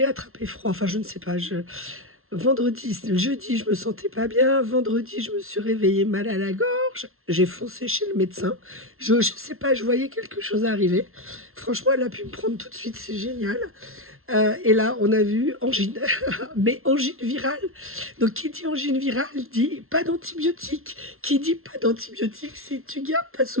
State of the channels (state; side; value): late; left; 0.62 ms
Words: attrapé froid. Enfin, je ne sais pas. Jeudi, je me sentais pas bien. Vendredi, je me suis réveillée mal à la gorge. J'ai foncé chez le médecin. Je sais pas, je voyais quelque chose arriver. Franchement, elle a pu me prendre tout de suite. C'est génial. Et là, on a vu angine, mais angine virale. Donc, qui dit angine virale dit pas d'antibiotiques. Qui dit pas d'antibiotiques, c'est tu gardes ta